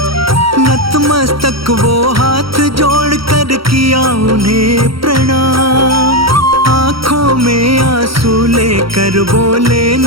नतमस्तक वो हाथ जोड़ कर किया उन्हें प्रणाम। आंखों में आंसू लेकर बोले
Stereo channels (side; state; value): left; late; 0.74 ms